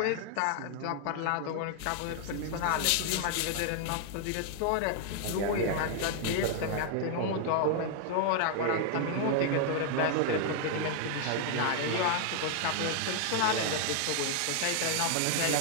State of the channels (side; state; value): both; different; correlation 0.00